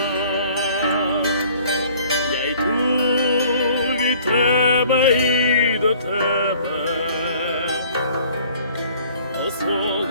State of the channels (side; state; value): both; inverted; correlation -0.54